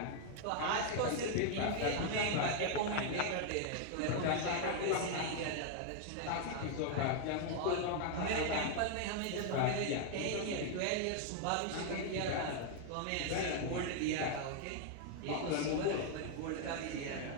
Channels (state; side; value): different; both; correlation 0.00